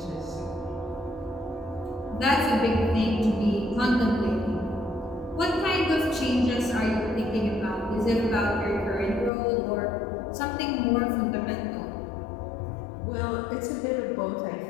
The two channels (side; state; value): right; drops out; at 9.3 s